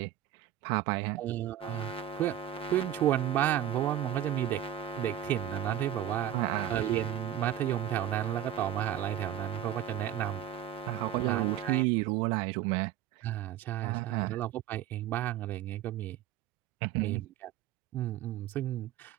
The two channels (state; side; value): quieter; left; 11.2 dB